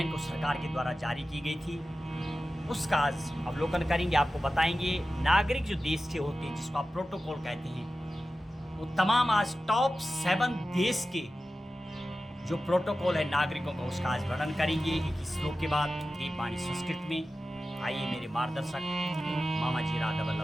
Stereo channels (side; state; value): both; normal; correlation 0.94